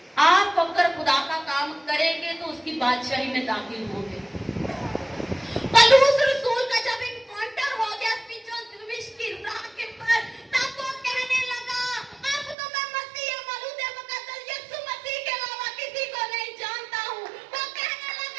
आप अगर खुदा का काम करेंगे तो उसकी बादशाही में दाखिल होंगे। पौलुस रसूल का जब एनकाउंटर हो गया दमिश्क की राह के पर, तब वो कहने लगा अब तो मैं मसीह मौलूद मुकद्दस यीशु मसीह के अलावा किसी को नहीं जानता हूँ। वो कहने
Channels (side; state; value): left; drops out; at 12.6 s